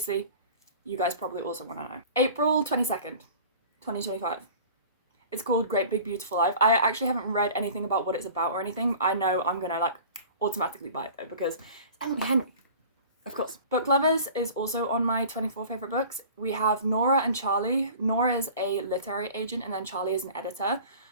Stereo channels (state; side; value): inverted; both; correlation -0.42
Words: you guys probably also want to know. April 22nd, 2025. It's called Great Big Beautiful Life. I actually haven't read anything about what it's about or anything. I know I'm gonna like automatically buy it though because it's Emily Henry, of course. Book Lovers is also on my 24 favourite books. We have Nora and Charlie. Nora is a literary agent and then Charlie is an editor.